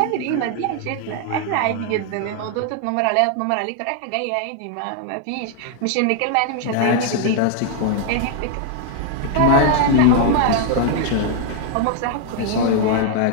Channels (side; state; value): both; different; correlation 0.00